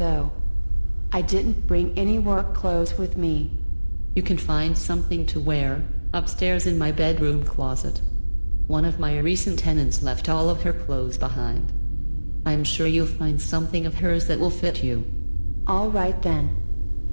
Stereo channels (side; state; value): both; inverted; correlation -1.00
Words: I didn't bring any work clothes with me. You can find something to wear upstairs in my bedroom closet. One of my recent tenants left all of her clothes behind. I'm sure you'll find something of hers that will fit you. All right then.